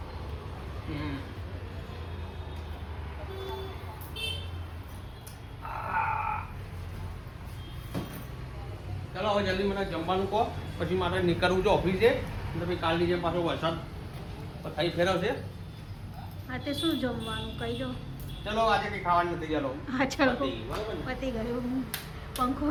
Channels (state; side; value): identical; both; correlation 1.00